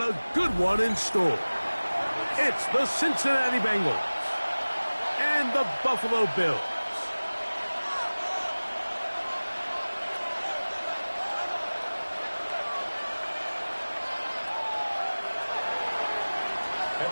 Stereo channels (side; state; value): both; inverted; correlation -1.00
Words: a good one in store. It's the Cincinnati Bengals and the Buffalo Bills.